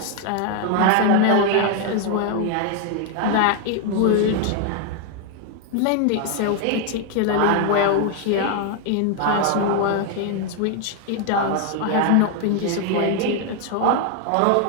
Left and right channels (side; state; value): both; different; correlation 0.01